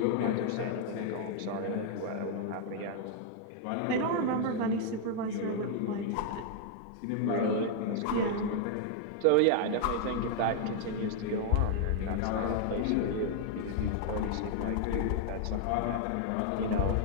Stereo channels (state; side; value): different; both; correlation -0.01